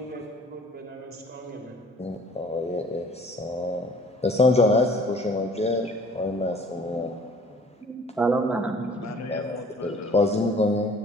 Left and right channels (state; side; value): normal; both; correlation 0.53